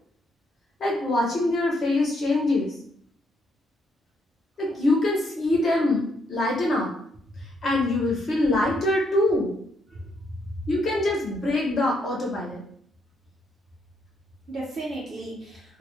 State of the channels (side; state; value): both; normal; correlation 0.75